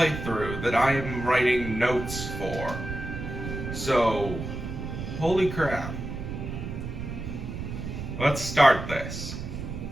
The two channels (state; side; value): noise; right; rumble, 7 dB below the sound